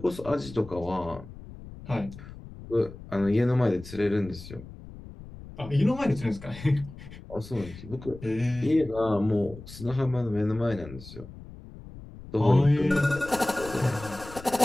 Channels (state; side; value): noise; left; rumble, 15 dB below the sound